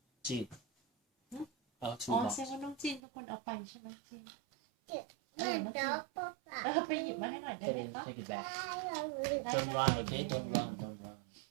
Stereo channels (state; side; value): drops out; left; at 3.0 s